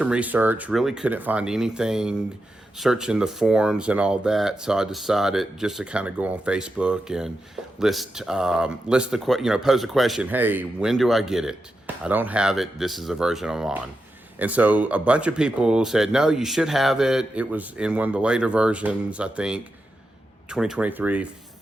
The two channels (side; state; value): both; normal; correlation 0.88